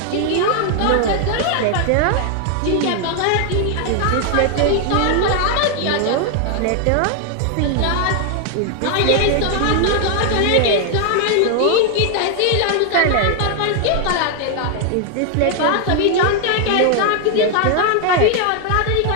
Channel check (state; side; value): different; both; correlation 0.00